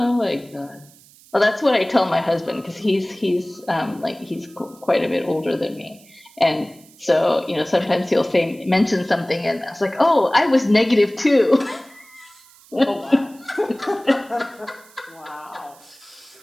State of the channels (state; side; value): noise; right; hiss, 26 dB below the sound